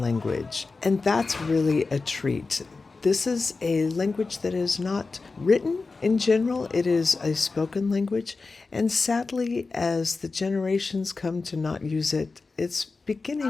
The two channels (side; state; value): right; quieter; 4.0 dB